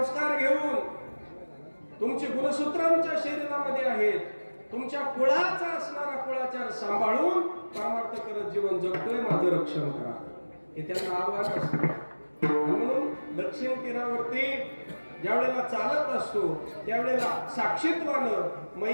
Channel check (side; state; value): both; inverted; correlation -1.00